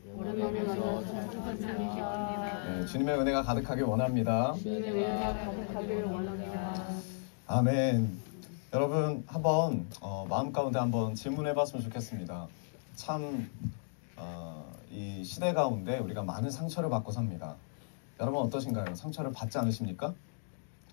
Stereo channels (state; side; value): silent; right; digital silence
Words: 오랜만에 만나서 참 기쁩니다. 네, 주님의 은혜가 가득하길 원합니다. 주님의 은혜가 가득하길 원합니다. 아멘. 여러분 한번 마음 가운데 한번 질문해봤으면 좋겠습니다. 참 이 시대 가운데 우리가 많은 상처를 받고 삽니다. 여러분 어떠신가요? 상처를 받지 않으십니까?